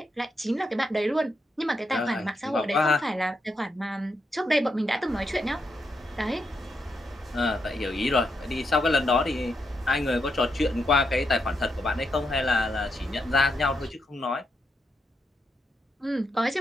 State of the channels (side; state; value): both; normal; correlation 0.81